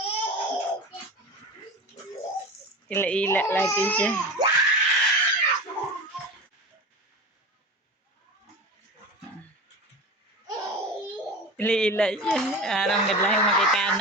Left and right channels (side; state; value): both; normal; correlation 0.29